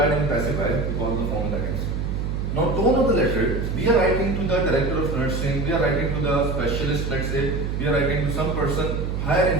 in passive voice because of the form that is. Now, tone of the letter, we are writing to the director of nursing, we are writing to the specialist, let's say, we are writing to some person higher in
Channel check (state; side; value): noise; right; hum, 1 dB below the sound